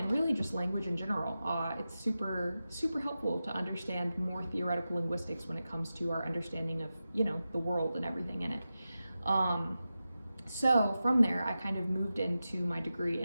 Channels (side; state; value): both; inverted; correlation -0.92